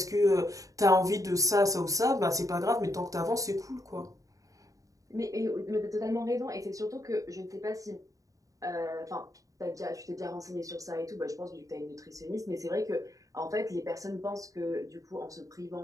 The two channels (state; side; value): late; left; 0.16 ms